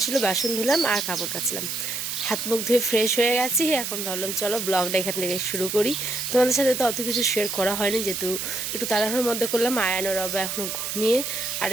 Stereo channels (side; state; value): right; noise; hiss, 4 dB below the sound